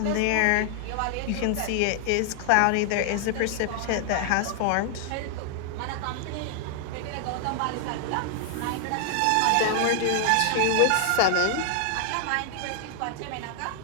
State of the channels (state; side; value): different; both; correlation -0.01